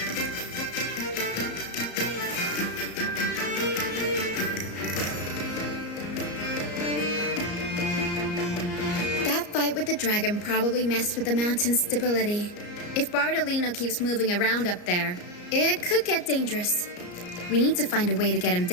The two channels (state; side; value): late; right; 34 ms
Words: That fight with the dragon probably messed with the mountain's stability. If Bartolino keeps moving around up there, it could get dangerous. We need to find a way to get him